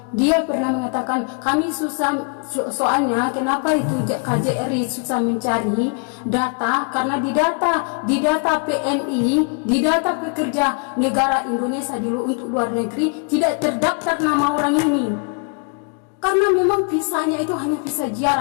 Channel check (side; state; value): right; quieter; 38.0 dB